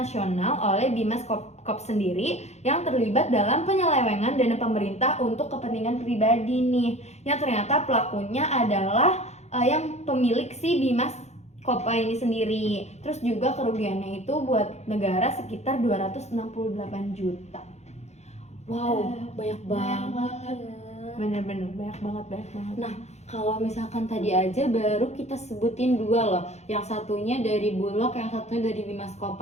oleh Bimaskop sendiri yang terlibat dalam penyelewengan dana pemerintah untuk kepentingan pribadi nih. Yang ternyata pelakunya adalah yang pemilik si Bimaskopa ini sendiri. Terus juga kerugiannya itu buat negara sekitar 268 juta. Wow, banyak banget. Bener-bener banyak banget. Nah, kalau misalkan tadi aja baru kita sebutin dua loh. Yang satunya dari Bulog, yang satunya dari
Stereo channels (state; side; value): late; right; 0.32 ms